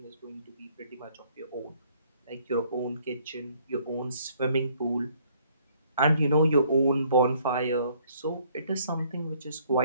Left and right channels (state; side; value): inverted; both; correlation -0.63